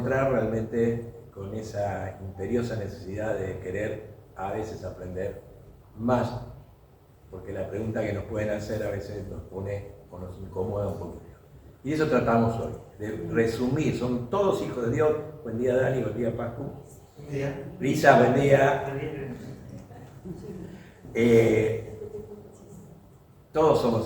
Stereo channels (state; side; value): identical; both; correlation 1.00